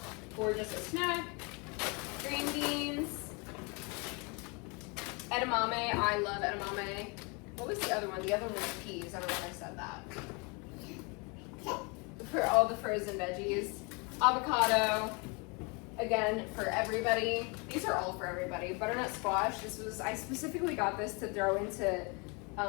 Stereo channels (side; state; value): right; quieter; 31.2 dB